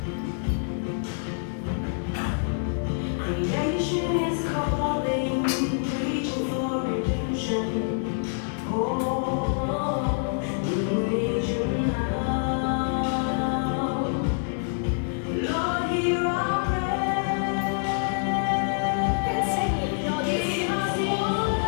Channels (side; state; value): right; silent; digital silence